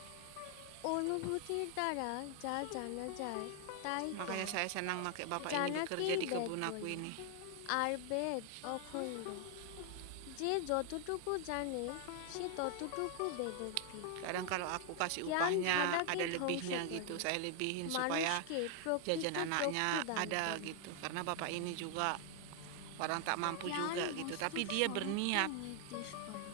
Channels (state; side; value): different; both; correlation 0.00